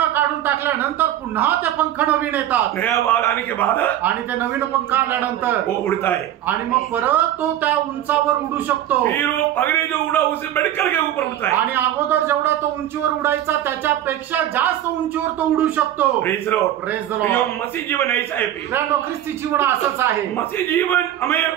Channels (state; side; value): quieter; left; 12.0 dB